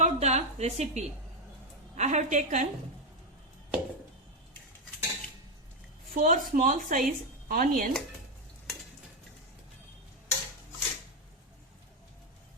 the recipe. I have taken 4 small size onion,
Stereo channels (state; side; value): normal; both; correlation 0.06